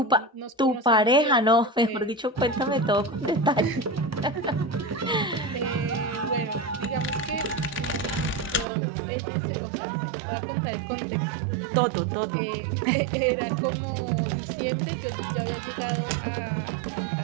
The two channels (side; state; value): left; drops out; at 8.7 s